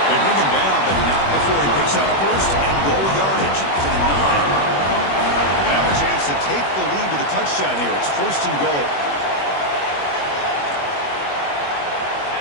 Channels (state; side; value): late; right; 21 ms